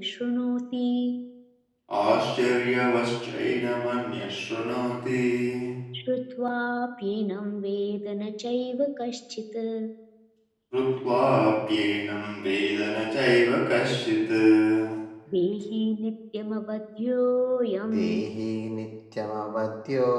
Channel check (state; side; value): identical; both; correlation 1.00